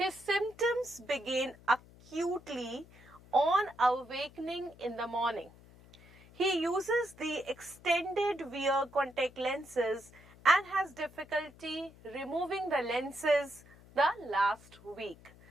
symptoms begin acutely on awakening in the morning. He uses the extended wear contact lenses and has difficulty removing the lenses the last week.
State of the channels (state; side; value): noise; left; hum, 23 dB below the sound